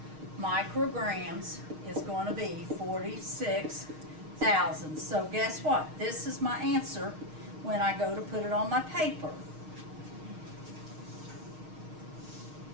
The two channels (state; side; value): late; left; 6.5 ms